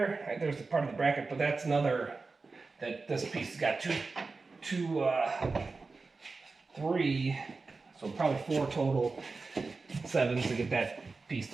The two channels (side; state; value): left; quieter; 4.0 dB